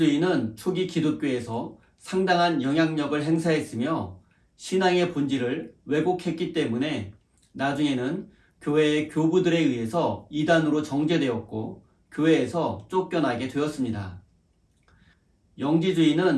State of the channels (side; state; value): both; identical; correlation 1.00